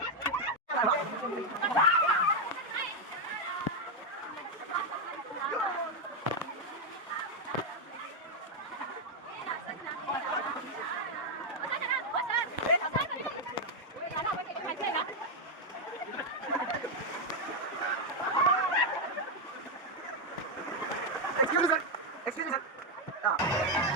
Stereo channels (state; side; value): normal; both; correlation 0.02